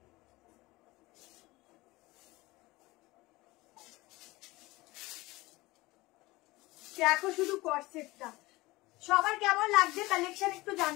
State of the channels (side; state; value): right; quieter; 20.6 dB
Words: দেখো শুধু কোট সেটটা, সবার কেমন লাগছে কালেকশন একটু